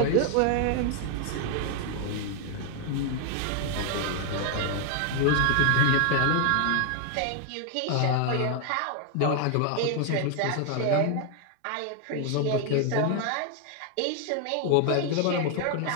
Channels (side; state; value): both; different; correlation 0.01